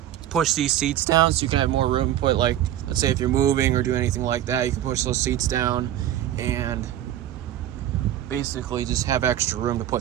push these seats down, so you can have more room to put, like, let's say if you're moving or doing anything like that, you can push those seats down and basically just have extra room to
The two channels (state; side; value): quieter; left; 12.2 dB